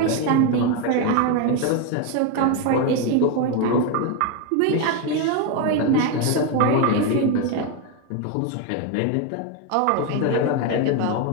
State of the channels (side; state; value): both; different; correlation 0.02